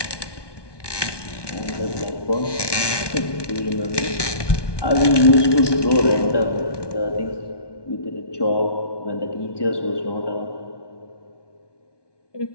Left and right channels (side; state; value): right; late; 1.2 ms